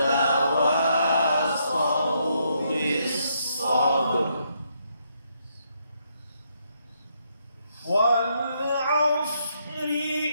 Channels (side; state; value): both; inverted; correlation -0.75